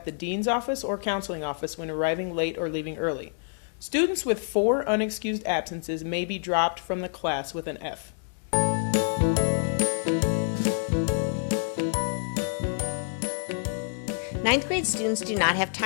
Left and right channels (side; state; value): right; silent; digital silence